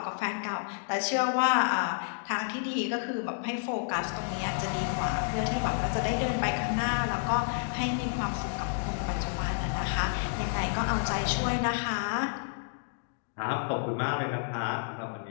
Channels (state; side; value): silent; right; digital silence